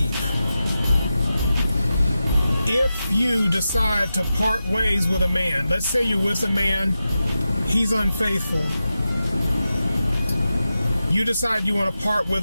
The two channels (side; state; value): both; inverted; correlation -0.92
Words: If you decide to part ways with a man, let's say you're with a man, he's unfaithful. You decide you want to part